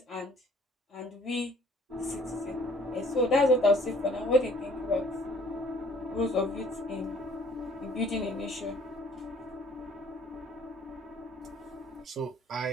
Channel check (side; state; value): both; normal; correlation 0.57